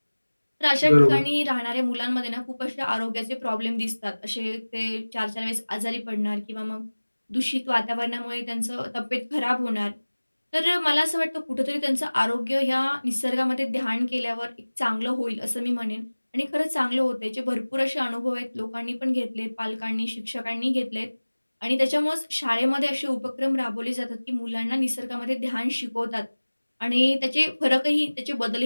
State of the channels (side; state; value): both; inverted; correlation -1.00